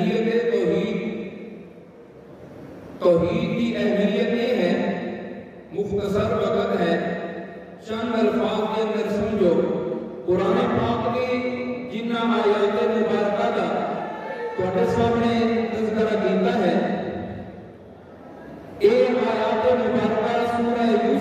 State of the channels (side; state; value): both; identical; correlation 1.00